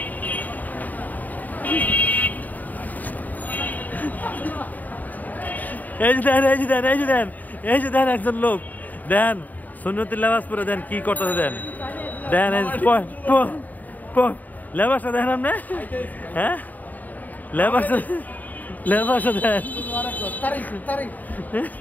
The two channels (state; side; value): late; right; 0.081 ms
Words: এই যে দেন এই যে দেন এই যে দেন এই যে দেন একজন লোক দেন সুন্নতি লেবাস পরে দেন কি করতেছে দেন দেন লেবাসটা দেন আপনি হ্যাঁ লেবাসটা লেবাসটা দেন